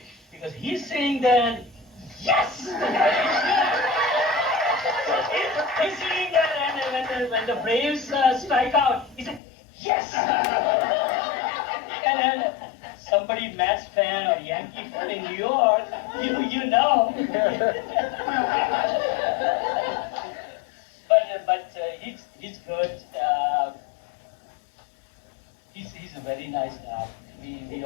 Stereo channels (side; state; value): right; drops out; at 9.4 s